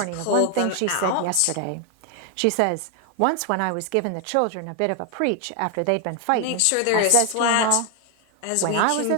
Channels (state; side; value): different; both; correlation 0.01